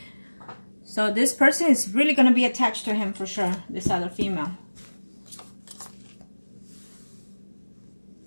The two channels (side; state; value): both; inverted; correlation -1.00